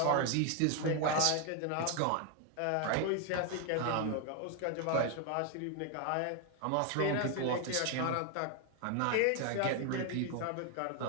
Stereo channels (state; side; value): different; both; correlation 0.01